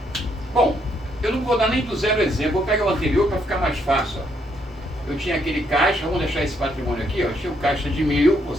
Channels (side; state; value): both; normal; correlation 0.73